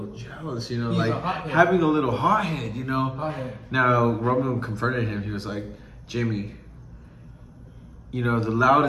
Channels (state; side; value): identical; both; correlation 1.00